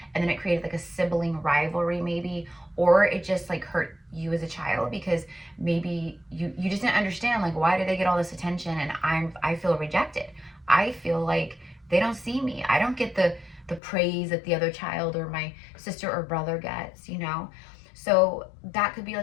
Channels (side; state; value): right; drops out; at 13.8 s